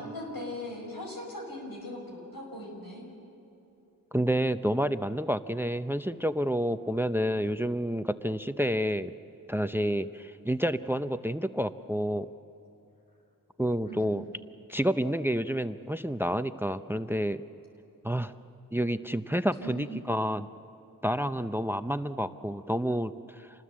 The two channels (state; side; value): normal; both; correlation 0.86